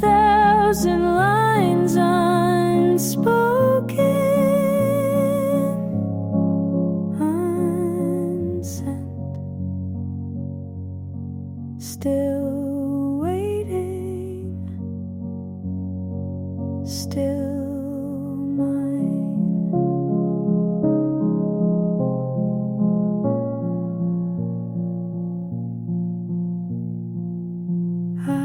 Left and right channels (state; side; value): identical; both; correlation 1.00